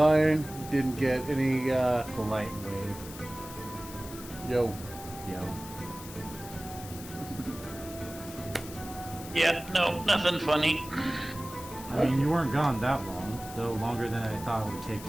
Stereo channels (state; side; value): noise; left; hiss, 14 dB below the sound